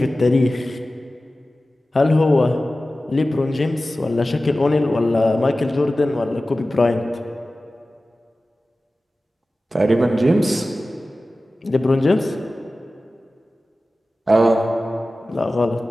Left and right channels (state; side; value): normal; both; correlation 0.96